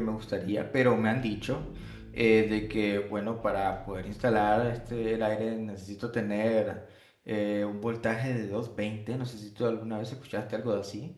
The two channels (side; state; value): both; identical; correlation 1.00